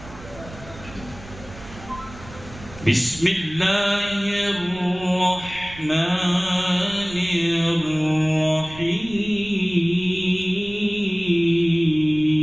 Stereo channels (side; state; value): right; noise; rumble, 17 dB below the sound